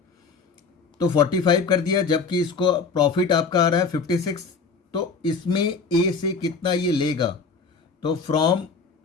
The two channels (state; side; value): quieter; right; 4.9 dB